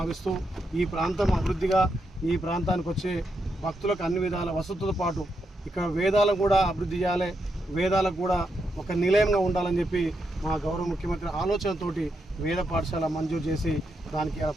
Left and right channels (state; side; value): normal; both; correlation 0.82